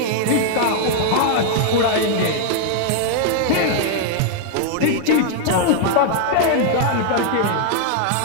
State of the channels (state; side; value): different; both; correlation 0.00